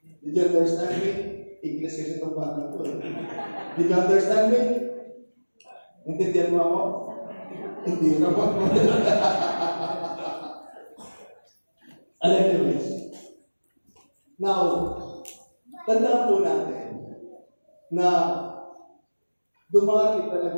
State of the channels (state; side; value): inverted; both; correlation -1.00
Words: Did you understand me? English kasi itong bata ko. Did you understand me? Intindihan mo ako? Hindi ka pa. Anyways. Now, tandaan po natin na dumarating